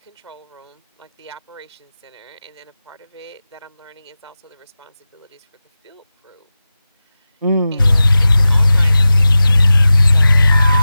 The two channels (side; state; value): both; inverted; correlation -0.94